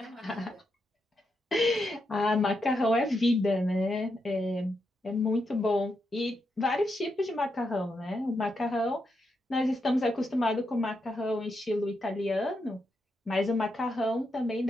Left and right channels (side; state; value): both; normal; correlation 0.83